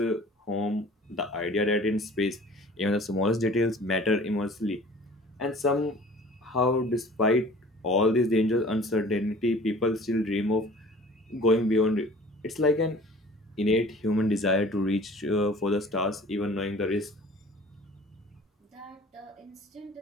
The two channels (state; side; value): normal; both; correlation 0.47